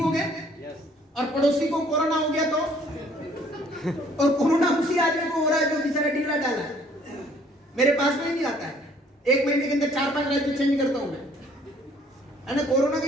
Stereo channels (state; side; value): normal; both; correlation 0.60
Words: गए, और पड़ोसी को कोरोना हो गया तो, और कोरोना उसी आदमी को हो रहा है जो बेचारा ढीला डाला है, मेरे पास में ही नहीं आता है। 1 महीने के अंदर 4-5 राज्य चेंज करता हूं मैं, है ना। कोरोना